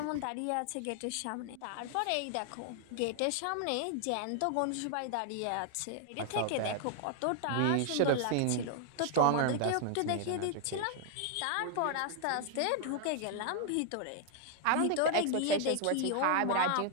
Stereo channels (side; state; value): both; different; correlation 0.00